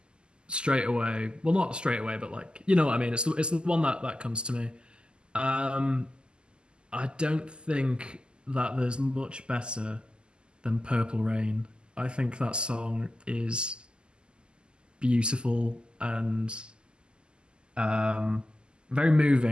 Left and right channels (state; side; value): late; left; 0.049 ms